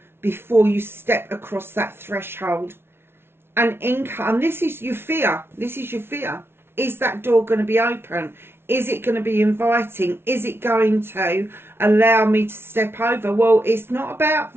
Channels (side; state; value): left; late; 0.12 ms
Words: before you step across that threshold. And this is your fear. This is your fear. Is that door going to be open? Is it going to be inviting? Is it going to allow me to step over? Well, it's not about